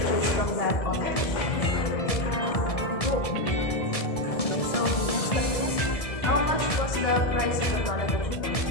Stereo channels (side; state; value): right; late; 1.7 ms